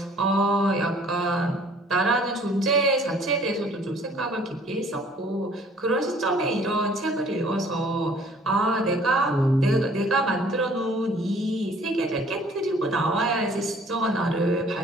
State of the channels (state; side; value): normal; both; correlation 0.55